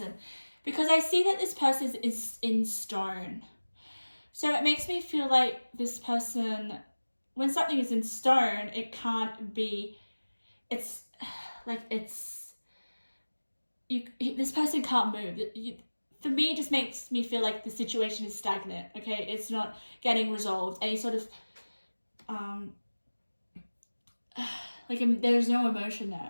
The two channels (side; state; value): both; inverted; correlation -1.00